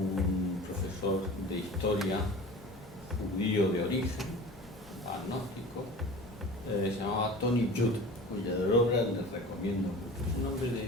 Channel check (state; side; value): normal; both; correlation 0.38